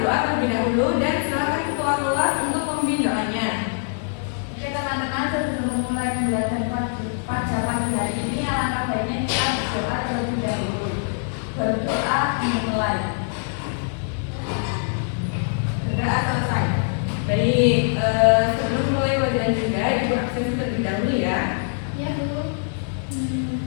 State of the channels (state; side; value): silent; right; digital silence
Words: terlebih dahulu dan silakan ketua kelas untuk memimpin doanya. Oke teman-teman, sebelum memulai pembelajaran pada pagi hari ini, alangkah baiknya kita berdoa terlebih dahulu. Berdoa dimulai. Berdoa selesai. Baik, sebelum mulai pelajaran juga, ibu absen terlebih dahulu ya. Ya Bu.